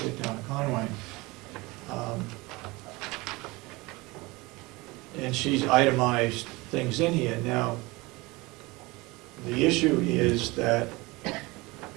Town of Conway. And she's itemized things in here. Now, the issue is that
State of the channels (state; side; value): quieter; left; 23.1 dB